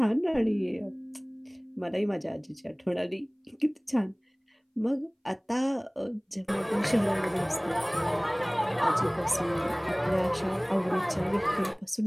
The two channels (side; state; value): both; identical; correlation 1.00